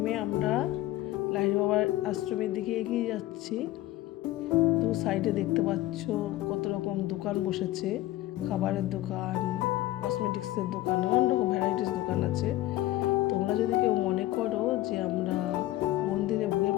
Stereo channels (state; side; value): quieter; right; 15.9 dB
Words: আমরা লাহিড়ী বাবার আশ্রমের দিকে এগিয়ে যাচ্ছি। তো সাইডে দেখতে পাচ্ছ কত রকম দোকান বসেছে, খাবারের দোকান, কসমেটিক্সের দোকান, নানান রকম ভ্যারাইটিস দোকান আছে। তোমরা যদি কেউ মনে করো যে আমরা মন্দিরে ভোগের